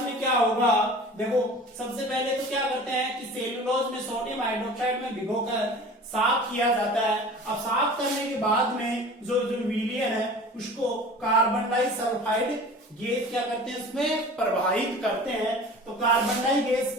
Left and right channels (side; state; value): both; normal; correlation 0.40